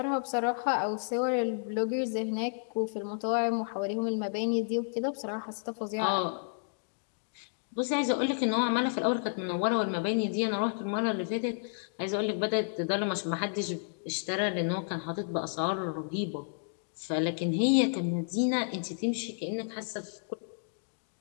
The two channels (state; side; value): silent; right; digital silence